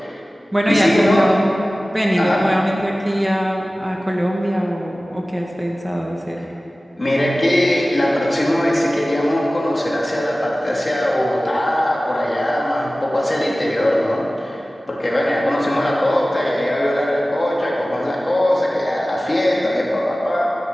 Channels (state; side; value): normal; both; correlation 0.97